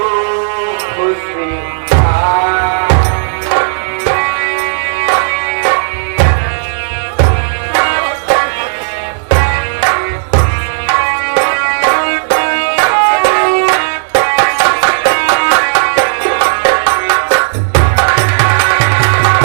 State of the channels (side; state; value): left; silent; digital silence